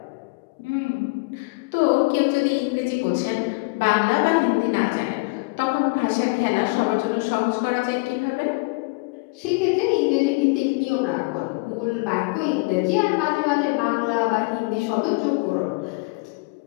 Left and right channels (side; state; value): right; quieter; 28.5 dB